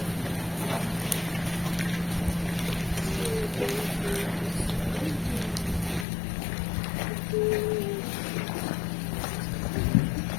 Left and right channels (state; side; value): drops out; right; at 6.1 s